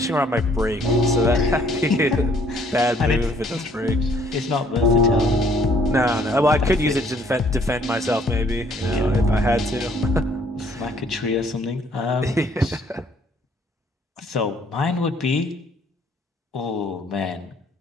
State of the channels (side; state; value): both; normal; correlation 0.62